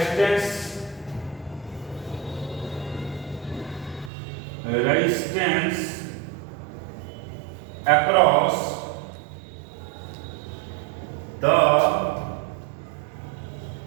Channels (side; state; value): left; drops out; at 4.1 s